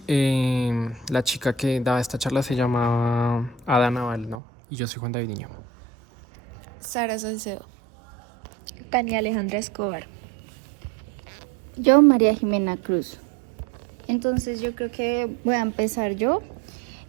la chica que daba esta charla se llama Ada Naval, ¿no? Y yo soy Juan David Niño. Sara Salcedo. Tania Alejandra Escobar. Yo, María Jimena Cruz. Entonces yo creo que voy a empezar yo.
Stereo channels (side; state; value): left; drops out; at 4.4 s